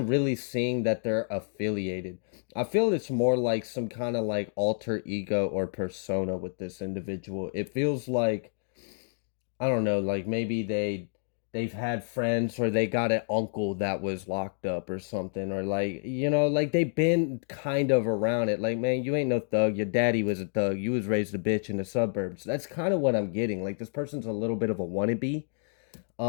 really seeing that they're affiliated. I feel it's more like some kind of like alter ego or persona with this individual. It feels like, I don't know, like maybe they've had friends, or they got an uncle that was locked up or something, or like, like they've been kind of around it. Like, man, you ain't no thug. Your daddy was a thug. You was raised a bitch in the suburbs. That's kind of what I'm getting. Like this person's a little bit of a wannabe.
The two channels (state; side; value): silent; right; digital silence